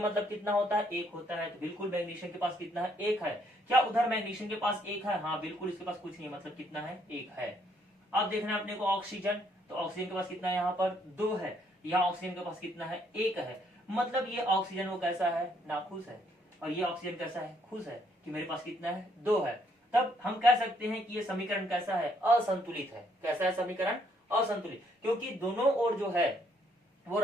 मतलब कितना होता है, एक होता है। तो बिल्कुल मैग्नीशियम के पास कितना है, एक है। क्या उधर मैग्नीशियम के पास एक है, हाँ बिल्कुल इसके पास कुछ नहीं है, मतलब कितना है, एक है। अब देखना है अपने को ऑक्सीजन, तो ऑक्सीजन के पास कितना है, यहाँ पर 2 है। यहाँ ऑक्सीजन के पास कितना है, 1 है। मतलब ये ऑक्सीजन वो कैसा है, नाखुश है, और ये ऑक्सीजन कैसा है, खुश है कि मेरे पास कितना है, 2 है। तब हम कह सकते हैं कि ये समीकरण कैसा है, असंतुलित है। कैसा है समीकरण, असंतुलित, क्योंकि दोनों ओर जो है वो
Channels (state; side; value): normal; both; correlation 0.69